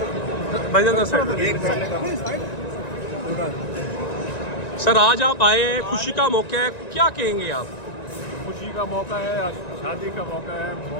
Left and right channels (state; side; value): late; right; 1.9 ms